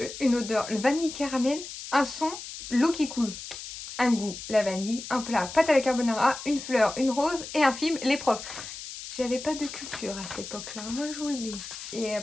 une odeur, le vanille caramel, un son, l'eau qui coule. Un goût, la vanille, un plat, pâte à la carbonara, une fleur, une rose et un film, les profs. J'avais pas de culture à cette époque-là, moi je vous le dis. Et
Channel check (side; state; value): left; noise; hiss, 10 dB below the sound